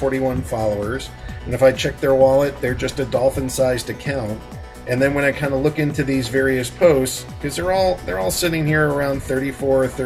followers. And if I check their wallet, they're just a dolphin-sized account. And then when I kind of look into these various posts, because they're all sitting here around $34 or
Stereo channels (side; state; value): both; identical; correlation 1.00